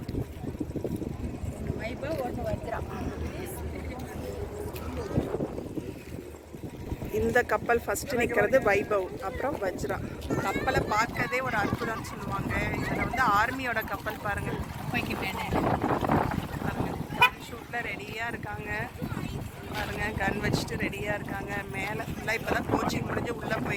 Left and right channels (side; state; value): both; identical; correlation 1.00